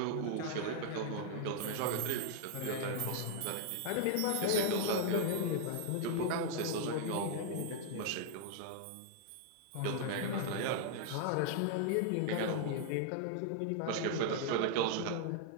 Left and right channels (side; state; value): both; different; correlation -0.01